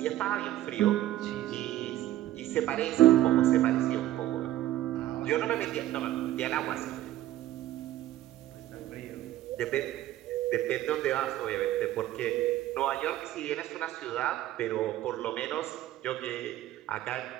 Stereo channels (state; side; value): quieter; left; 14.0 dB